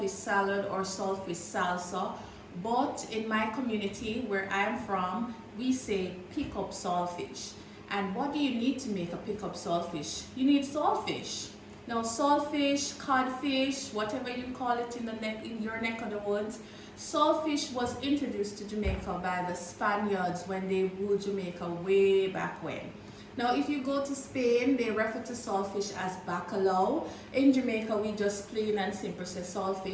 salad or saltfish salsa, but in my community where I'm from, we say pick up saltfish. And what do you need to make a pick up saltfish? You need saltfish. Now, saltfish, codfish, whatever you call it in your neck of the woods, saltfish was introduced to Jamaica by the Spaniards when they ruled Jamaica way back when. Now, if you go to Spain, they refer to saltfish as bacalao. In Jamaica, we just plain and simple say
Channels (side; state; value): both; identical; correlation 1.00